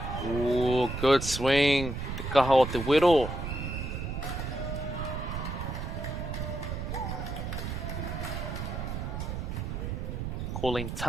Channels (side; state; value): right; noise; rumble, 4 dB below the sound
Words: Ooh, good swing. Te kaha o te wero. Calling